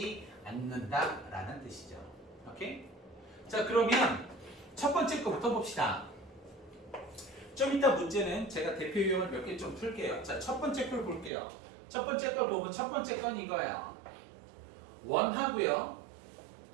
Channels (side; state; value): left; drops out; at 11.3 s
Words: 않는다라는 뜻이죠. 오케이? 자, 그러면 첫 번째 거부터 봅시다. 좀 이따 문제는 제가 대표 유형을 몇 개 좀 풀게요. 자, 첫 번째 걸 볼게요. 첫 번째 걸 보면 첫 번째 건 이거예요. 원하고요.